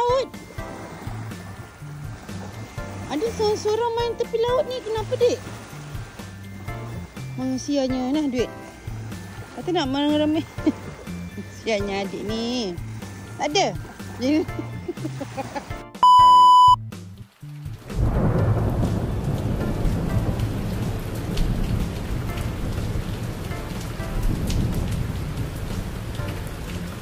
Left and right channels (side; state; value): both; identical; correlation 1.00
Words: Ada seorang-seorang main tepi laut ni, kenapa dek? Sianya nah duit. Kata nak ramai. Sianya adik ni. Tak ada.